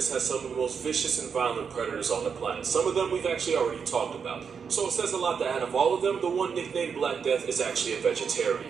has some of the most vicious and violent predators on the planet. Some of them we've actually already talked about. So it says a lot that out of all of them, the one nicknamed Black Death is actually a vegetarian.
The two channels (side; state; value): left; quieter; 6.4 dB